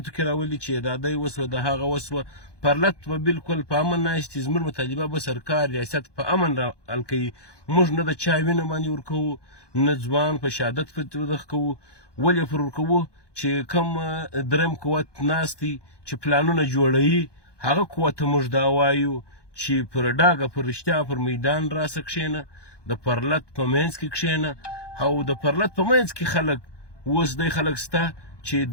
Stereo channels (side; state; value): right; late; 1.2 ms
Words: کې راولي چې دا دی وسوه د هغه وسوه. پرلت به بالکل په امن ناست دي. زموږ مطالبه به سرکار ریاست په امن را حل کوي. موږ نه د چا وینه باندې ورکوو، نه ځوان په شهادت ودغه کوو. ولې پر ورکوو چې کوم درېیم قوت ناست دی چې پلانونه جوړوي، هغه قوت ته موږ دا وایو چې پر ډاګه پر رښتیا پر میدان راسه کښېنه، د پرلت په منځ کې کښېنه. او د پرلت په منځ کې خلک اوس دی خلک شته چې